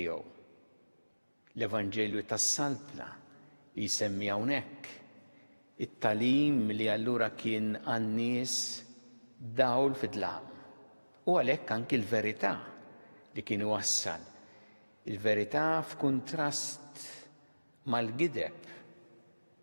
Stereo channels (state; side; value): inverted; both; correlation -1.00